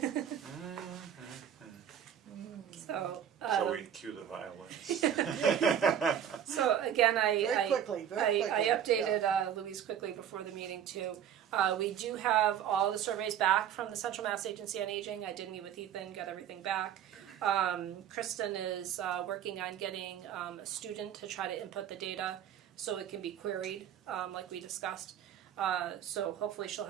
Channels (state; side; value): quieter; left; 9.4 dB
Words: So, So we cue the violins. so again, Very quickly. I updated Louise quickly before the meeting too. We do have all the surveys back from the Central Mass Agency on Aging. I did meet with Ethan, got everything back. Kristen is working on getting a student to try to input the data so it can be queried, like we discussed. So hopefully she'll